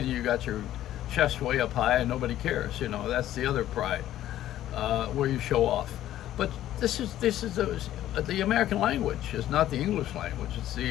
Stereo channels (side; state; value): right; quieter; 12.9 dB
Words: you got your chest way up high and nobody cares. You know, that's the other pride, where you show off. But this is the American language. It's not the English language. It's